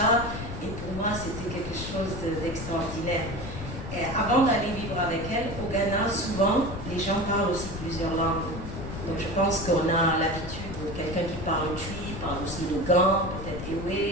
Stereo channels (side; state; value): left; noise; rumble, 8 dB below the sound